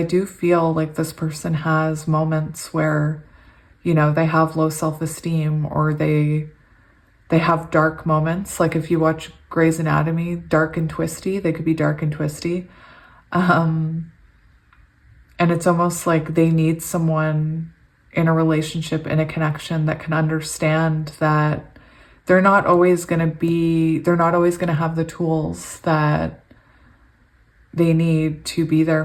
do feel like this person has moments where, you know, they have low self-esteem, or they have dark moments. Like if you watch Grey's Anatomy, dark and twisty, they could be dark and twisty. And it's almost like they need someone in a relationship, in a connection, that can understand that they're not always going to have the tools that they need to be there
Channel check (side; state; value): both; identical; correlation 1.00